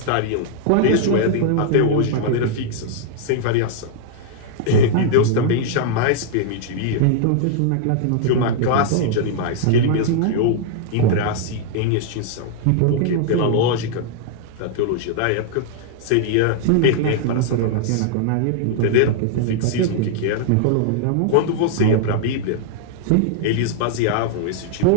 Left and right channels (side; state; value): both; different; correlation -0.01